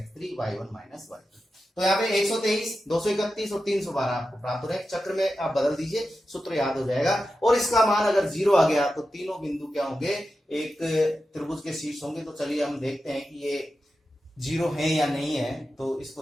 y1 minus y2। तो यहाँ पे 123 231 और 312 आपको प्राप्त हो रहा है। चक्र में आप बदल दीजिए, सूत्र याद हो जाएगा। और इसका मान अगर 0 आ गया तो तीनों बिंदु क्या होंगे, एक त्रिभुज के शीर्ष होंगे। तो चलिए हम देखते हैं कि ये 0 है या नहीं है। तो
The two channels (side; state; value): both; normal; correlation 0.91